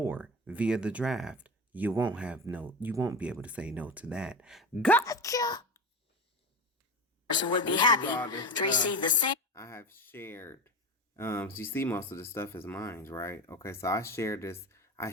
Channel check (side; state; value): both; normal; correlation 0.25